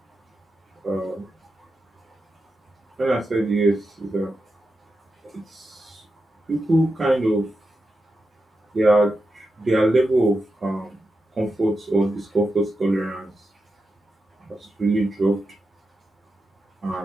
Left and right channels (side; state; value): both; normal; correlation 0.89